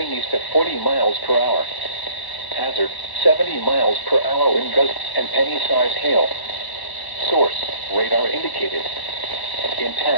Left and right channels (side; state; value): right; late; 1.1 ms